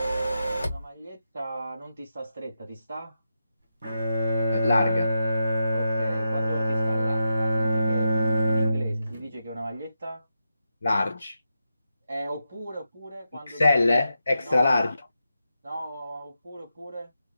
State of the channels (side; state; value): both; inverted; correlation -0.87